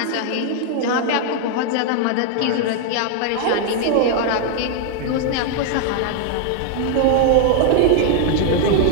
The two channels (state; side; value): different; both; correlation 0.00